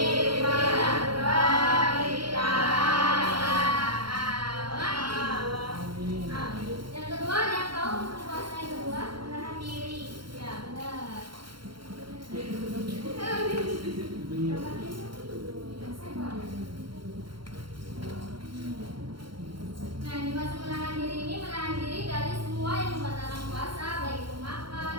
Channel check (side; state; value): left; late; 0.73 ms